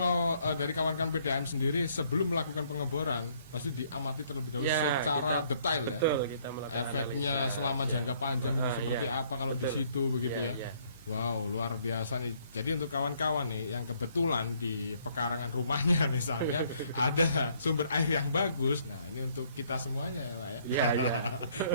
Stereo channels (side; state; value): both; inverted; correlation -0.65